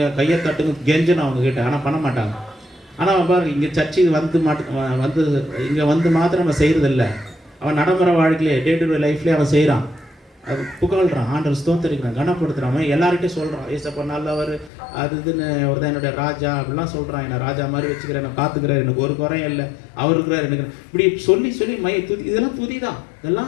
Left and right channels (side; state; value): right; drops out; at 14.7 s